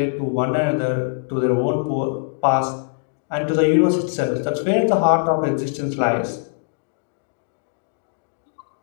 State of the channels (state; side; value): silent; right; digital silence